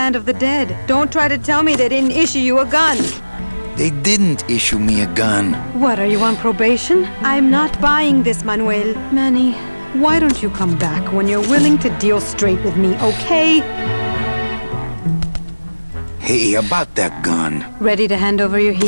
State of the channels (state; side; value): inverted; both; correlation -1.00